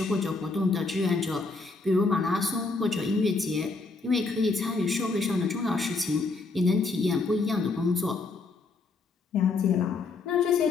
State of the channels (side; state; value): right; quieter; 3.9 dB